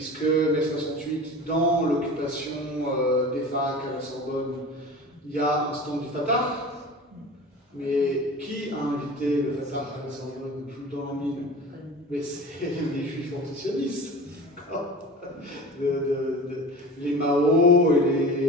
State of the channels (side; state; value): both; normal; correlation 0.36